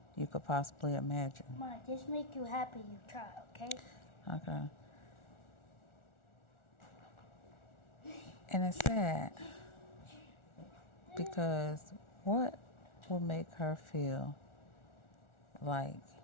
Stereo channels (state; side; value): late; right; 1.4 ms